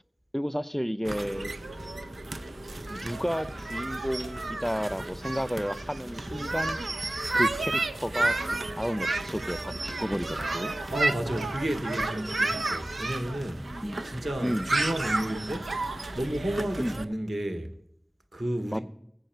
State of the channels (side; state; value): both; normal; correlation 0.97